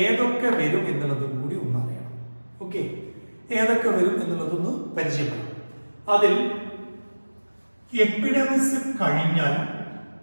വരും എന്നുള്ളതും കൂടി ഒന്ന് അറിയണം. ഓക്കെ, ഏതൊക്കെ വരും എന്നുള്ളതൊന്ന് പരിചയപ്പെടാം. അതിൽ എപ്പിഡെമിസ് കഴിഞ്ഞാൽ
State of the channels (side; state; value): both; inverted; correlation -1.00